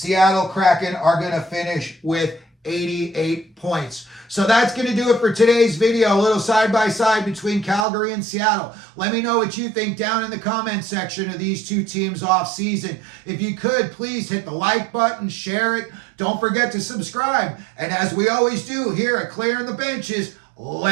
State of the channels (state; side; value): drops out; left; at 7.9 s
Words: Kraken are going to finish with 88 points. So that's going to do it for today's video. A little side-by-side between Calgary and Seattle. Let me know what you think down in the comment section of these two teams off season. If you could, please hit the like button, share it. Don't forget to subscribe. And as we always do here at Clearing the Benches,